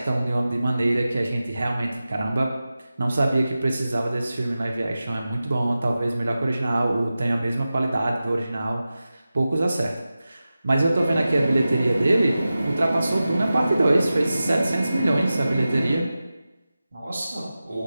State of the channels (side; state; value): both; inverted; correlation -0.94